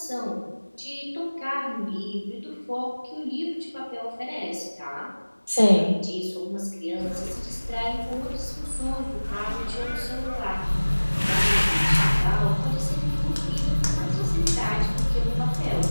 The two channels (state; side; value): inverted; both; correlation -1.00